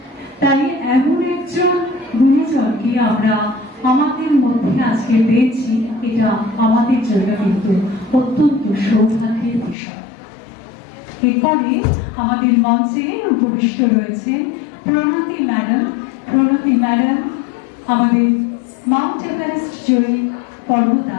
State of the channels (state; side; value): drops out; right; at 9.8 s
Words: তাই এমন একজন গুণীজনকে আমরা আমাদের মধ্যে আজকে পেয়েছি, এটা আমাদের জন্য কিন্তু অত্যন্ত সৌভাগ্যের বিষয়। এরপরে আমাদের মঞ্চে উপবিষ্ট রয়েছে প্রণতি ম্যাডাম। প্রণতি ম্যাডাম আমাদের মাউন্ট এভারেস্ট জয়ী